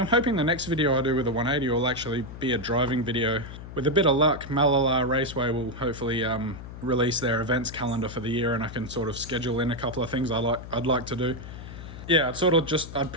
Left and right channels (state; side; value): noise; left; hum, 12 dB below the sound